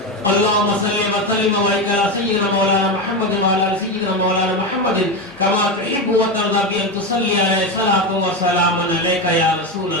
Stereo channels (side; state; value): both; normal; correlation 0.15